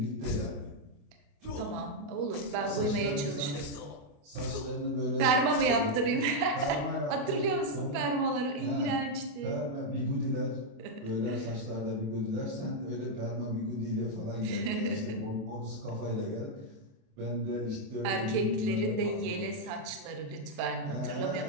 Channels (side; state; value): left; late; 29 ms